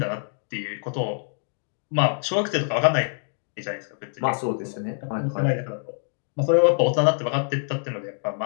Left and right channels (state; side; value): silent; right; 62 dB below the other